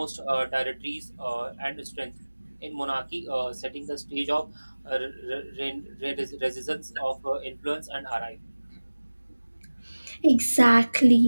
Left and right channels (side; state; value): both; inverted; correlation -1.00